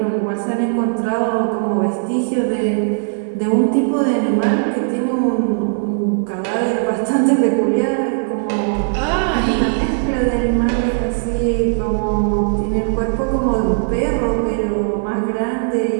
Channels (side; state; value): left; silent; digital silence